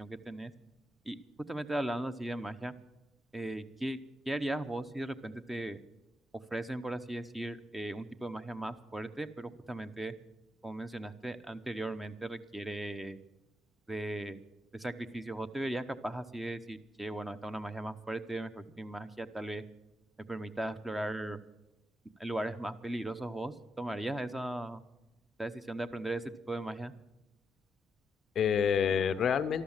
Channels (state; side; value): normal; both; correlation 0.82